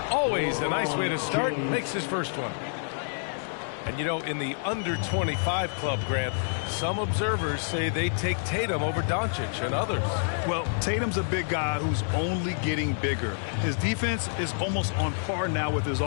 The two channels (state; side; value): silent; right; digital silence